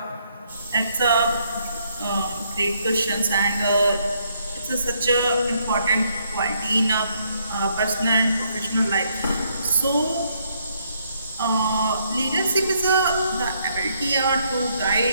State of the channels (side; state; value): both; inverted; correlation -0.72